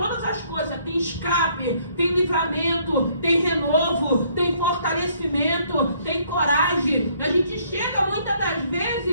as coisas. Tem escape, tem livramento, tem renovo, tem fortalecimento, tem coragem. A gente chega muitas das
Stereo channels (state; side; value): inverted; both; correlation -0.65